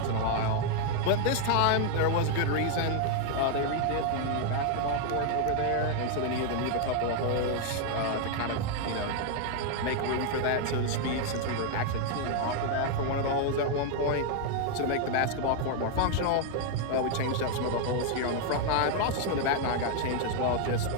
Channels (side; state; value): both; different; correlation 0.00